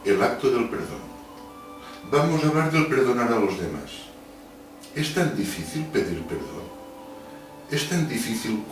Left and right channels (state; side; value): identical; both; correlation 1.00